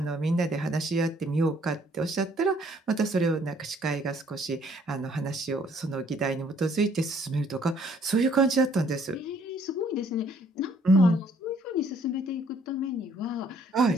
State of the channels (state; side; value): normal; both; correlation 0.63